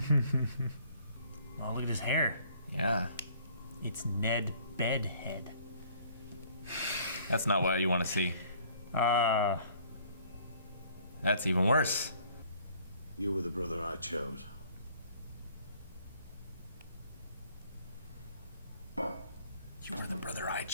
Well, look at his hair. Yeah. It's Ned Bedhead. That's not what you want to see. That's even worse. You were the brother I chose. You were the brother I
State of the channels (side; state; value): both; inverted; correlation -0.58